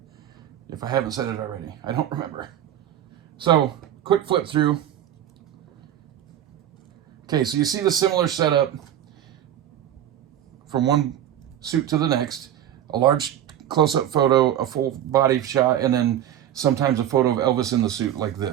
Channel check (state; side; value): quieter; left; 11.0 dB